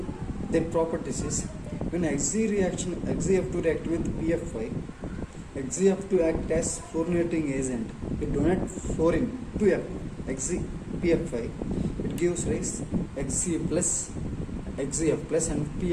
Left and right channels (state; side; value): identical; both; correlation 1.00